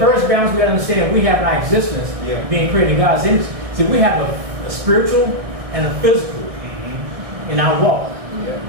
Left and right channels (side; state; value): left; late; 1.6 ms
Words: first balance we got to understand we have in our existence, Yeah. being created in God's image. See, we have a spiritual and a physical in our walk. Yeah.